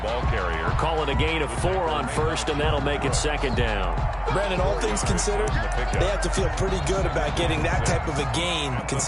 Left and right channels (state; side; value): identical; both; correlation 1.00